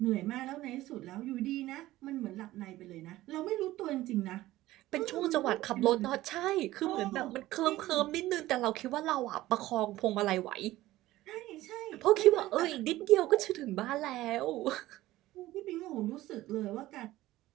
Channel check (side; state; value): left; quieter; 16.4 dB